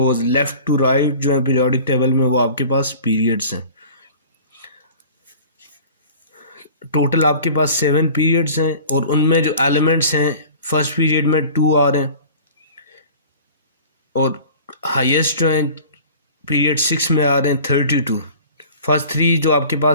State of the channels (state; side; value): inverted; both; correlation -0.43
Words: left to right जो है पीरियोडिक टेबल में वो आपके पास पीरियड्स हैं। टोटल आपके पास 7 पीरियड्स हैं और उनमें जो एलिमेंट्स हैं फर्स्ट पीरियड में 2 आ रहे हैं, और हाईएस्ट जो हैं पीरियड 6 में आ रहे हैं 32। फर्स्ट 3 जो आपके